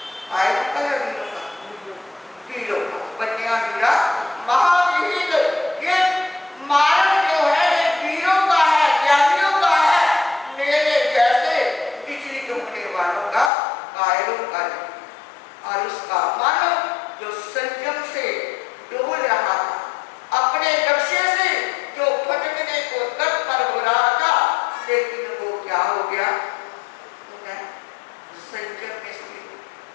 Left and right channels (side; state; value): right; drops out; at 13.5 s